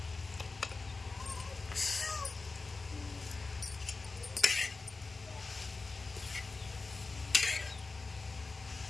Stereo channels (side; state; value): right; quieter; 3.8 dB